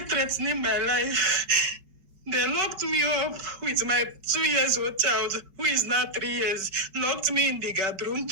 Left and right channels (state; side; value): late; left; 5.3 ms